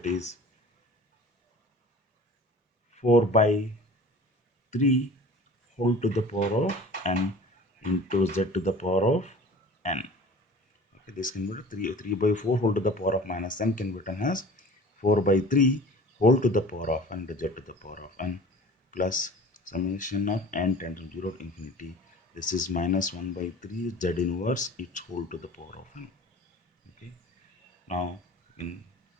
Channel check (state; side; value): normal; both; correlation 0.43